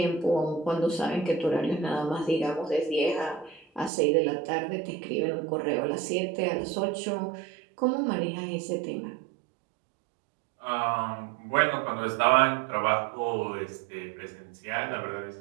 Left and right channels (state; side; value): drops out; left; at 3.9 s